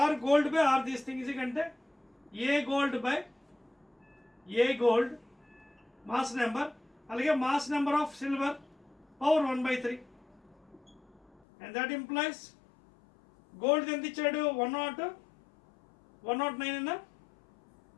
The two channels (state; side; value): drops out; right; at 11.4 s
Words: R gold by R this thing is అంటే A gold by A gold mass number, అలాగే mass number of silver power 1 by 3. And that implies gold ఎంత ఇచ్చాడు 109 అన్న